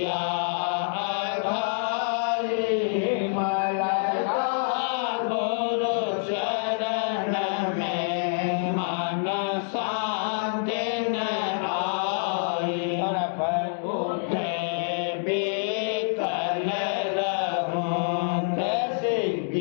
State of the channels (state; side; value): silent; right; digital silence